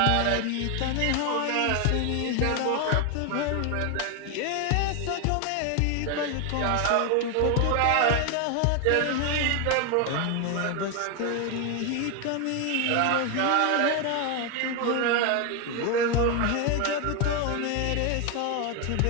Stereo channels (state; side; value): different; both; correlation 0.01